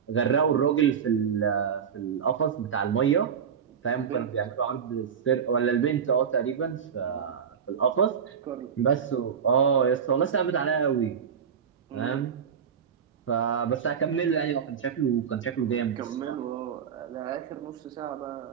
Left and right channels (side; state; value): left; quieter; 7.3 dB